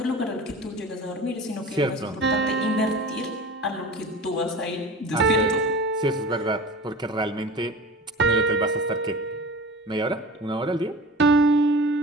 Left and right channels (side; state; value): both; normal; correlation 0.36